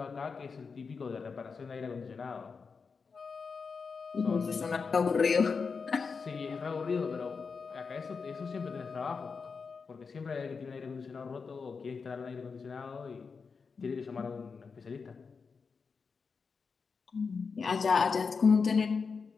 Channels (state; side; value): quieter; right; 5.2 dB